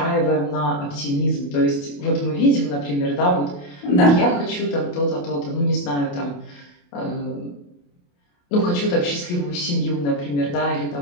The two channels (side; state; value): right; late; 28 ms